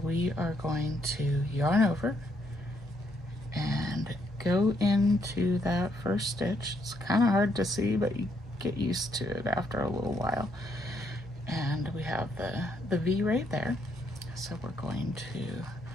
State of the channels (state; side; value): normal; both; correlation 0.73